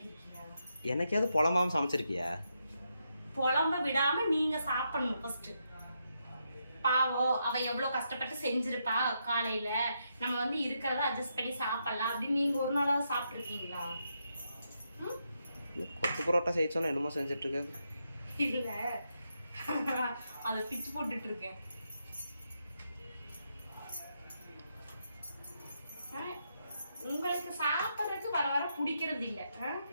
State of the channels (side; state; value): both; inverted; correlation -0.81